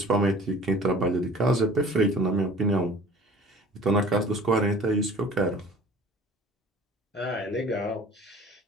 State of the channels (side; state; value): both; normal; correlation 0.47